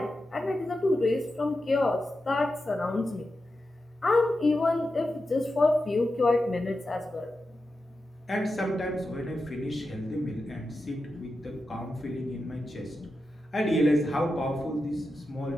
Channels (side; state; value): both; normal; correlation 0.90